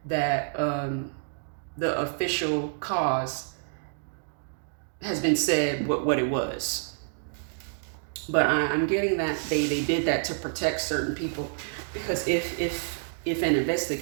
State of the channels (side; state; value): left; silent; digital silence